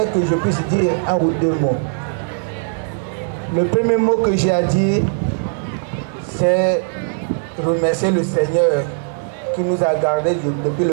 que je puisse dire un ou deux mots. Le premier mot que j'ai à dire, c'est remercier le Seigneur qui nous a gardés depuis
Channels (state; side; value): silent; left; 66 dB below the other